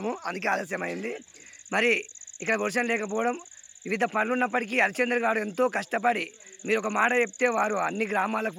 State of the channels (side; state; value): both; identical; correlation 1.00